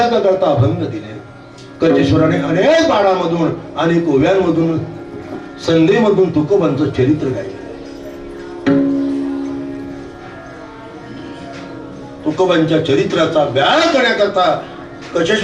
करता अभंग दिले. कजेश्वराने अनेक बाणामधून, अनेक ओव्यांमधून, संधीमधून तुकोबांचं चरित्र गायलं. तुकोबांच्या चरित्राचा अभ्यास करण्याकरता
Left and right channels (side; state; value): both; identical; correlation 1.00